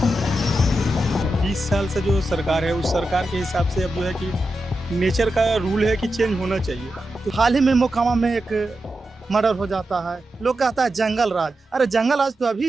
20 साल से जो सरकार है उस सरकार के हिसाब से अब जो है कि नेचर का रूल है कि चेंज होना चाहिए। तो हाल ही में मोकामा में एक मर्डर हो जाता है, लोग कहता है जंगल राज। अरे जंगल राज तो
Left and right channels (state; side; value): normal; both; correlation 0.89